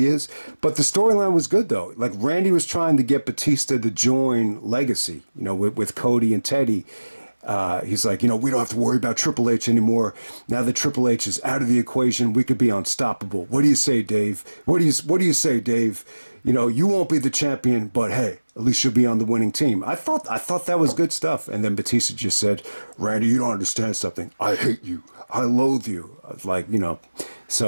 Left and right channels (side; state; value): both; inverted; correlation -1.00